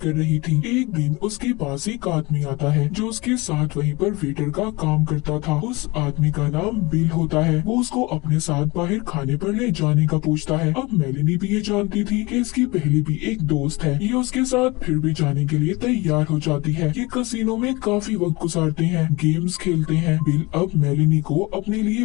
रही थी। एक दिन उसके पास एक आदमी आता है जो उसके साथ वहीं पर वेटर का काम करता था। उस आदमी का नाम बिल होता है। वो उसको अपने साथ बाहर खाने पर ले जाने का पूछता है। अब मेलिनी भी ये जानती थी कि इसकी पहले भी एक दोस्त है। ये उसके साथ फिर भी जाने के लिए तैयार हो जाती है। ये कसिनो में काफी वक्त गुजारते हैं, गेम्स खेलते हैं। बिल अब मेलिनी को अपने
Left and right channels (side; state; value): right; quieter; 24.1 dB